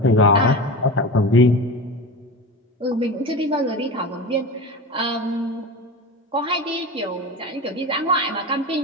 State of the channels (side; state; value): both; normal; correlation 0.27